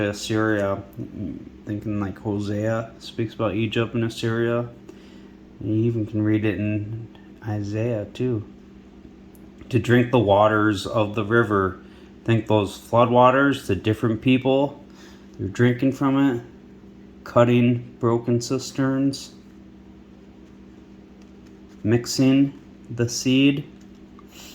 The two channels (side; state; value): both; identical; correlation 1.00